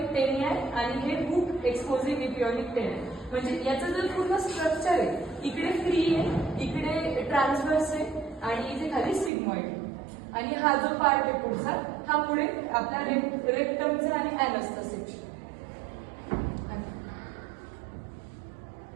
टेनिया आणि हे हुक एक्सपोजिंग इपिओनिक टेनिया म्हणजे याचं जर पूर्ण स्ट्रक्चर आहे इकडे फ्री आहे, इकडे ट्रान्सव्हर्स आहे आणि इथे खाली सिग्मॉइड आणि हा जो पार्ट आहे पुढचा हा पुढे आपला रेक्टमचा आणि ॲनसचा सेक्शन.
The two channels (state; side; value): drops out; left; at 9.3 s